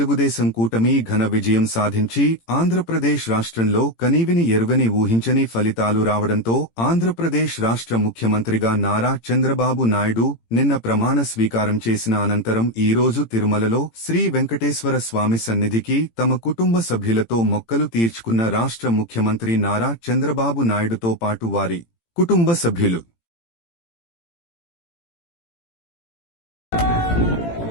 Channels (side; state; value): right; late; 18 ms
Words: కూటమి ఘన విజయం సాధించి ఆంధ్రప్రదేశ్ రాష్ట్రంలో కనీవిని ఎరుగని ఊహించని ఫలితాలు రావడంతో ఆంధ్రప్రదేశ్ రాష్ట్ర ముఖ్యమంత్రిగా నారా చంద్రబాబు నాయుడు నిన్న ప్రమాణ స్వీకారం చేసిన అనంతరం ఈరోజు తిరుమలలో శ్రీ వెంకటేశ్వర స్వామి సన్నిధికి తమ కుటుంబ సభ్యులతో మొక్కలు తీర్చుకున్న రాష్ట్ర ముఖ్యమంత్రి నారా చంద్రబాబు నాయుడుతో పాటు వారి కుటుంబ సభ్యులు